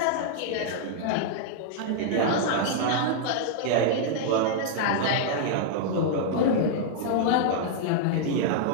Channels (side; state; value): both; different; correlation -0.01